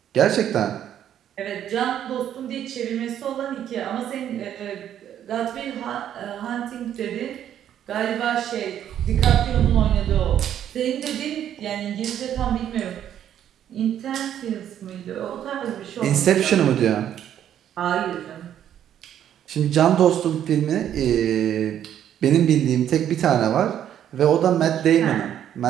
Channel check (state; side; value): quieter; left; 10.3 dB